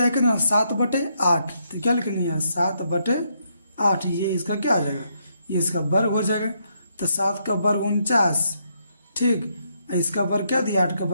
है कितना 7/8, तो क्या लिखेंगे यहाँ 7/8, ये इसका क्या हो जाएगा ये इसका वर्ग हो जाएगा। तो 7 का वर्ग 49, ठीक, इसका वर्ग क्या दिया 8 का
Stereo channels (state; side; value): inverted; both; correlation -0.76